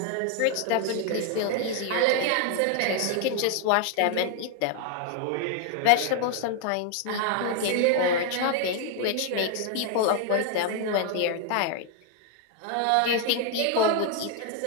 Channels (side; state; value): both; different; correlation 0.00